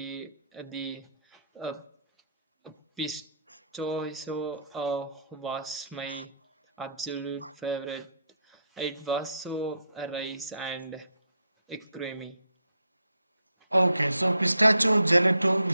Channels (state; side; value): inverted; both; correlation -0.75